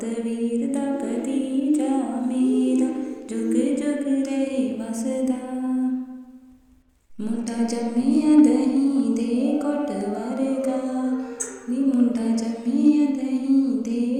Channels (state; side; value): identical; both; correlation 1.00